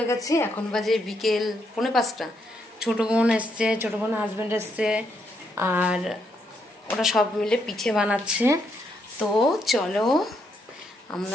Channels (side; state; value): both; normal; correlation 0.77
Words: गेছি এখন বাজে বিকেল 4:30 ছোট বোন এসেছে ছোট বোন হাজবেন্ড এসেছে আর ওরা সব মিলে পিঠে বানাচ্ছে তো চলো